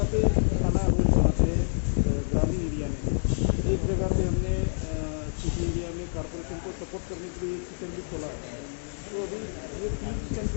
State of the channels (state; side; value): silent; right; digital silence